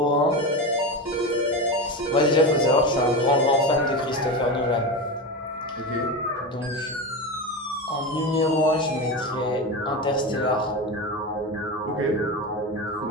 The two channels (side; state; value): both; normal; correlation 0.21